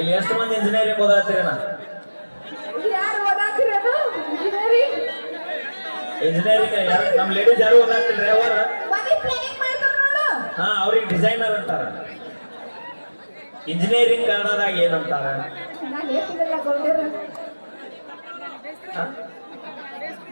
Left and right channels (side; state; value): both; inverted; correlation -1.00